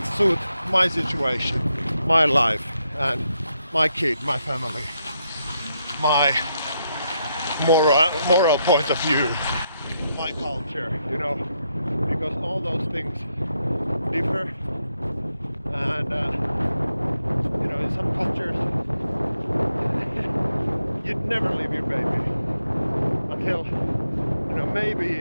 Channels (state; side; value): inverted; both; correlation -0.81